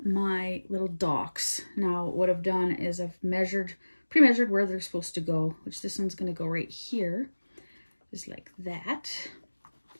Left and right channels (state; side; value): inverted; both; correlation -1.00